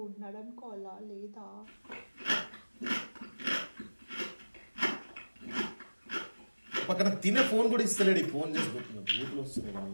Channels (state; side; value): inverted; both; correlation -1.00